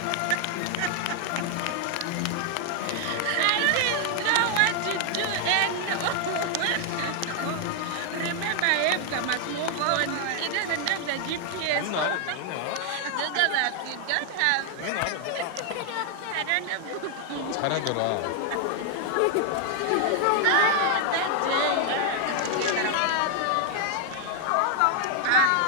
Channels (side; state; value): both; different; correlation 0.00